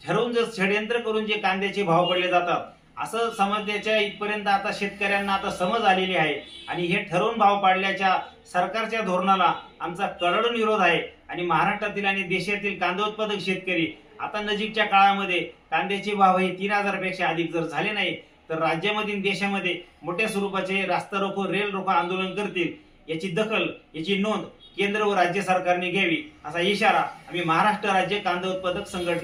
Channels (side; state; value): both; identical; correlation 1.00